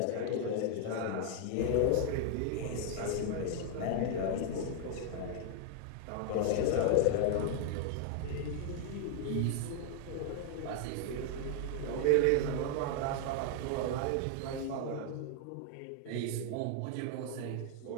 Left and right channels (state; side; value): different; both; correlation 0.00